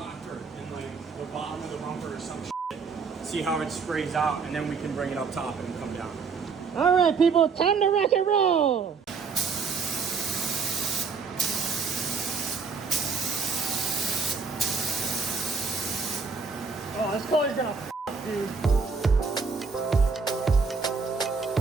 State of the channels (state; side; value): quieter; left; 5.1 dB